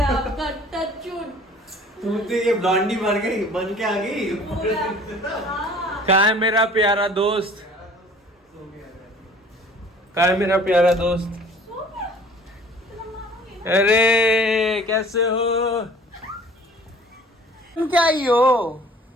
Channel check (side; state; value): both; normal; correlation 0.50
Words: आपका, टचवुड। तुम तो ये ब्लॉन्डी बन के आ गई। हाँ। कहाँ है मेरा प्यारा दोस्त? कहाँ है मेरा प्यारा दोस्त? सो गया? तेरा मामा गया? अरे कैसे हो? तुम क्या ही हो?